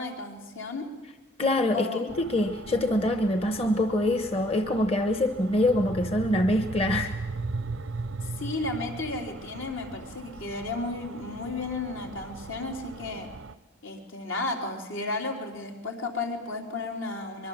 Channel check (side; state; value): both; normal; correlation 0.56